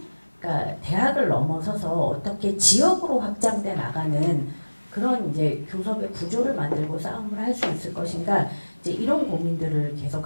그러니까 대학을 넘어서서 어떻게 지역으로 확장돼 나가는 그런 이제 교섭의 구조를 만들고 싸움을 할 수 있을 것인가. 이제 이런 고민들을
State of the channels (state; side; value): inverted; both; correlation -1.00